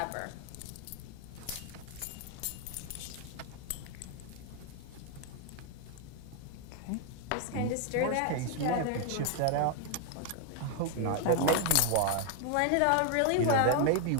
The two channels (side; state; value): both; different; correlation 0.00